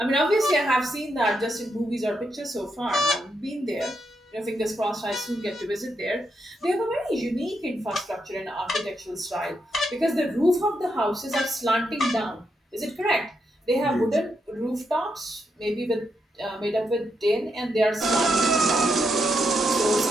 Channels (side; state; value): both; normal; correlation 0.81